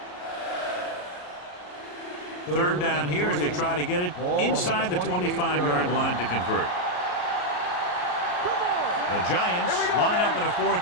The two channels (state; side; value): late; right; 34 ms